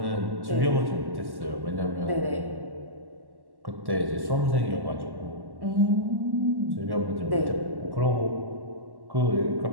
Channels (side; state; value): left; late; 1.1 ms